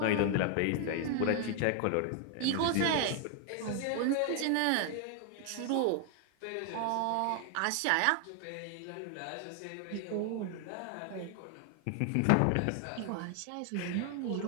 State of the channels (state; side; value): different; both; correlation 0.00